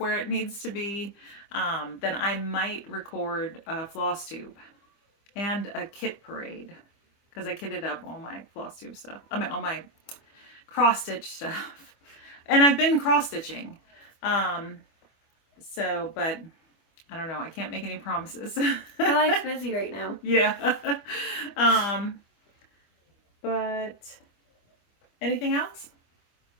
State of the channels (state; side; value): late; right; 25 ms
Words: it needs to be, then I might record a floss tube and a kit parade. Because I kitted up all my floss tube stuff. I mean, all my cross stitch stuff. And I've been cross stitching. So, but I don't know. I can't make any promises. My life's busy right now. Yeah. But anything else?